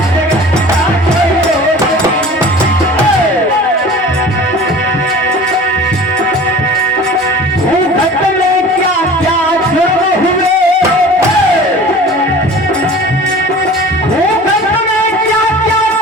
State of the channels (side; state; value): both; normal; correlation 0.42